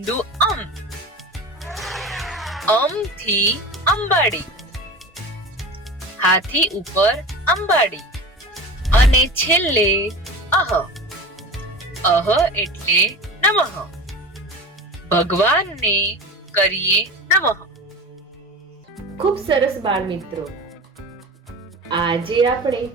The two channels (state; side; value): normal; both; correlation 0.33